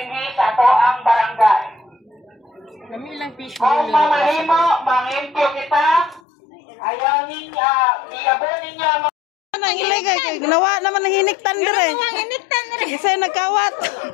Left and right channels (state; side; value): drops out; right; at 6.2 s